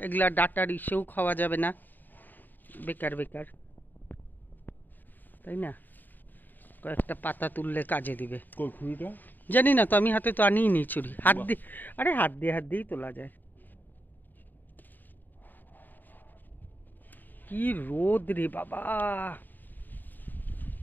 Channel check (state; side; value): late; right; 0.089 ms